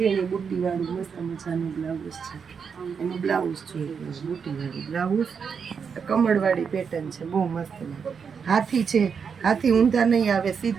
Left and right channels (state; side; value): quieter; left; 6.3 dB